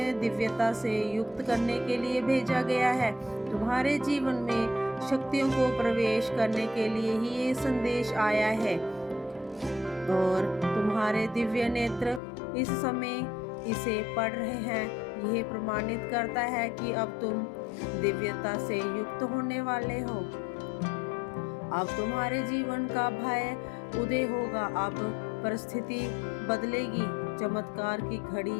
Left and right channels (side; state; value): right; drops out; at 12.2 s